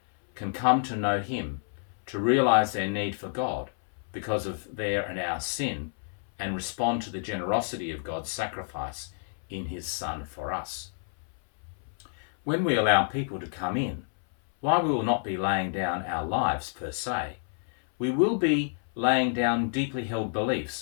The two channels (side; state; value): right; silent; 59 dB below the other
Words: can come to know Him, to realise their need for God because of their and our sin, and respond to the generosity of God's sacrifice in His Son for us. When we allow people to come in, while we will not be laying down our lives per se, we will be laying down deeply held